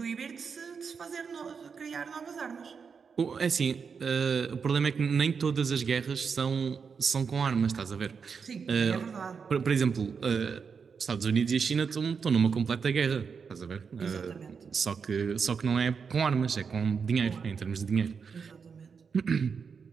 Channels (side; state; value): left; quieter; 5.9 dB